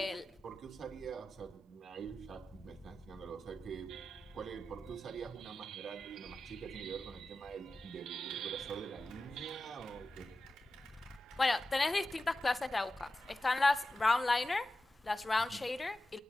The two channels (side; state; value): both; normal; correlation 0.92